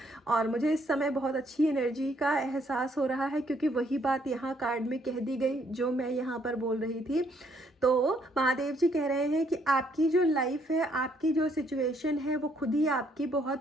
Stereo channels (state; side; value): normal; both; correlation 0.69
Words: और मुझे इस समय बहुत अच्छी एनर्जी का एहसास हो रहा है क्योंकि वही बात यहाँ कार्ड में कह दी गई जो मैं यहाँ पर बोल रही थी। तो महादेव जी कह रहे हैं कि आपकी जो लाइफ है, आपकी जो सिचुएशन है वो खुद ही आपकी